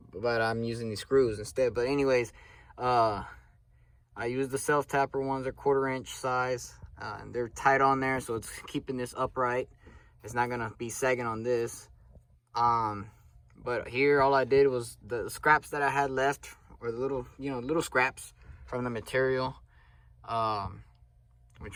but I'm using these screws instead. But anyways, I used the self-tapper ones. They're 1/4 inch size, and they're tight on there, so it's keeping this upright. It's not gonna be sagging on this. But here all I did was the scraps that I had left, or the little scraps from the material,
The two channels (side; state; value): both; identical; correlation 1.00